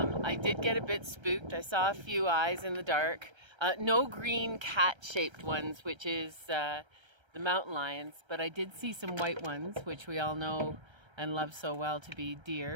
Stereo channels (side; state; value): left; late; 1.3 ms